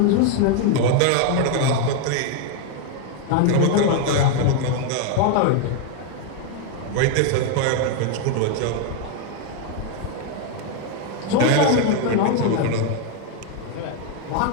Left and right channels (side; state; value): both; different; correlation 0.01